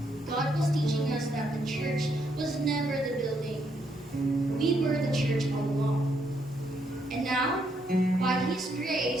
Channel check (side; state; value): both; normal; correlation 0.75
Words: God was teaching us that the church was never the building. We were the church all along. And now, by His